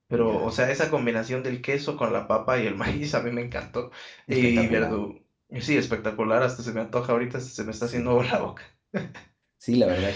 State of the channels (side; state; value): both; identical; correlation 1.00